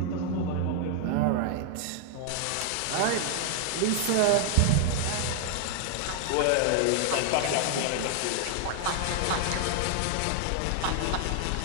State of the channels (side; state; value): both; different; correlation 0.00